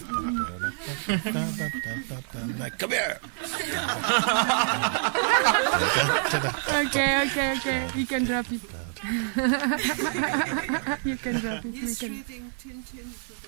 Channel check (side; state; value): left; silent; 60 dB below the other